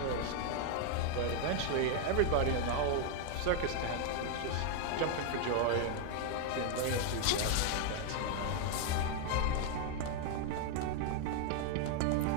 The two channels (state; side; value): different; both; correlation 0.00